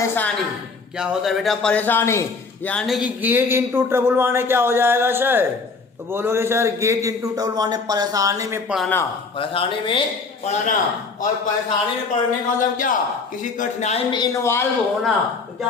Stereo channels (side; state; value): right; quieter; 4.4 dB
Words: क्या होता है बेटा? परेशानी। यानी कि गेट इनटू ट्रबल माने क्या हो जाएगा सर? तो बोलोगे सर गेट इनटू ट्रबल माने परेशानी में पड़ना। परेशानी में पड़ना। और परेशानी में पड़ने का मतलब क्या? किसी कठिनाई में इन्वॉल्व होना। तो क्या